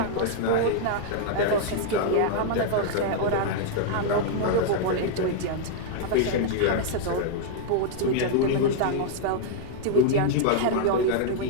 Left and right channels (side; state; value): both; different; correlation -0.01